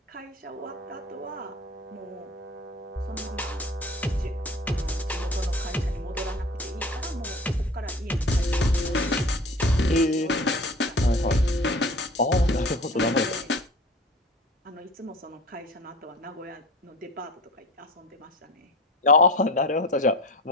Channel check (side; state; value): both; normal; correlation 0.39